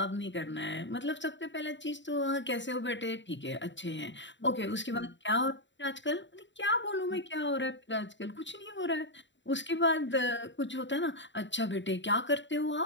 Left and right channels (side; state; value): right; late; 0.53 ms